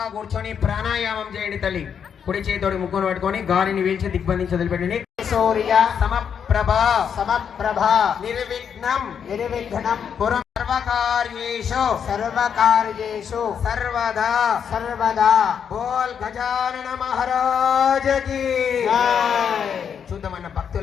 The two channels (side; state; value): right; quieter; 7.6 dB